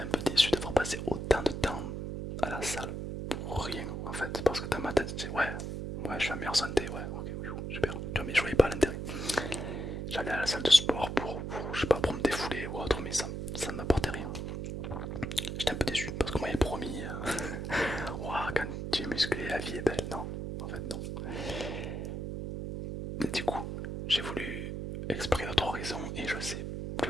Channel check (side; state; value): right; noise; hum, 4 dB below the sound